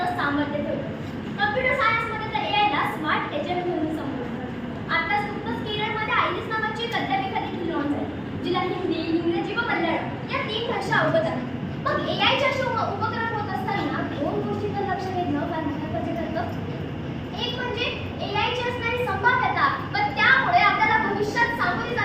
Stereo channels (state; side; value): identical; both; correlation 1.00